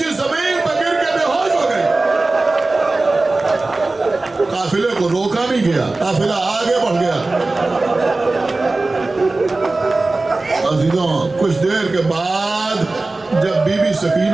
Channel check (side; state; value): left; quieter; 3.2 dB